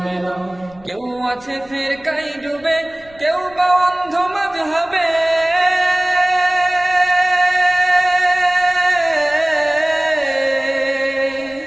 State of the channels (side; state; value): left; noise; rumble, 26 dB below the sound